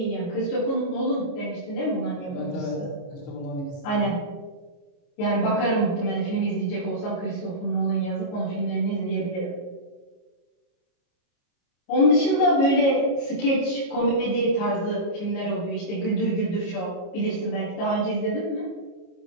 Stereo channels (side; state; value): right; late; 29 ms